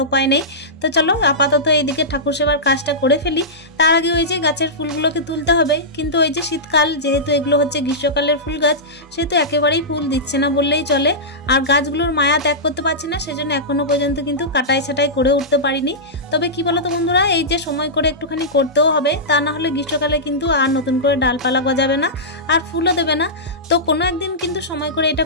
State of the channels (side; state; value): both; normal; correlation -0.15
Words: উপায় নেই। তো চলো আপাতত এইদিকে ঠাকুর সেবার কাজটা করে ফেলি। তার আগে ওই যে গাছের ফুলগুলোকে তুলতে হবে। কিন্তু ওই যে শীতকাল, যেহেতু এগুলো হচ্ছে গ্রীষ্মকালের ফুল গাছ, সেহেতু একেবারেই ফুল দিচ্ছে না বললেই চলে। আর গাছগুলোর মায়া ত্যাগ করতে পারছি না, সেজন্য এখনো পর্যন্ত কিন্তু কাটাই ছাটাই করে উঠতে পারিনি। তবে কি বলতো বন্ধুরা, এই যে সময় করে একটুখানি করতেও হবে, তা না হলে গ্রীষ্মকালে কিন্তু আর নতুন করে ডালপালা গজাবে না আর ফুলও দেবে না। তো কোনো একদিন কিন্তু সময় করে এটা